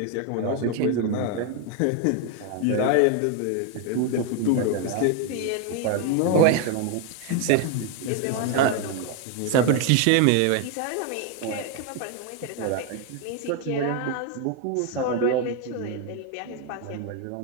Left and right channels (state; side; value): different; both; correlation 0.01